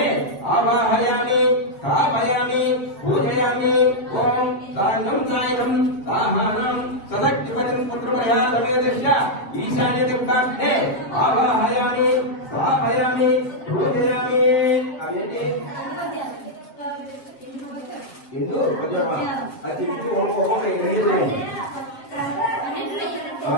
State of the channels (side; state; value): right; late; 7.7 ms